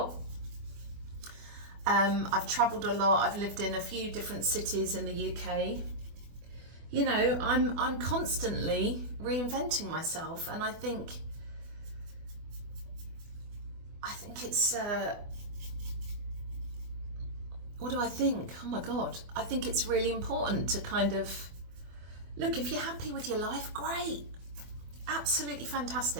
I've travelled a lot. I've lived in a few different cities in the UK. I'm constantly reinventing myself, and I think it's what do I think? Oh my God, I think it's really important to kind of look, if you're happy with your life, great, absolutely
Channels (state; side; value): late; left; 24 ms